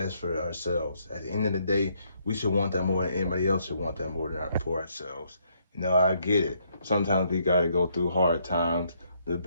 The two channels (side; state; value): both; inverted; correlation -0.72